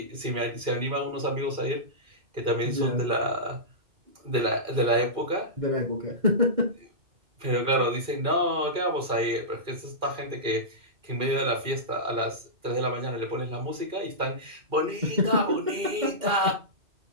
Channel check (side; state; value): left; late; 2.4 ms